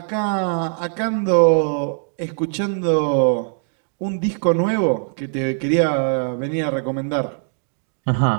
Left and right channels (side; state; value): left; silent; digital silence